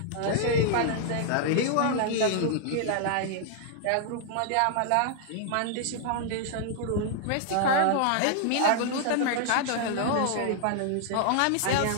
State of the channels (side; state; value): both; different; correlation -0.01